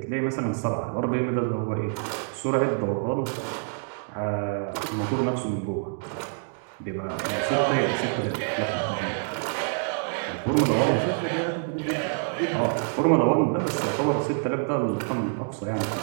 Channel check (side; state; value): left; silent; 60 dB below the other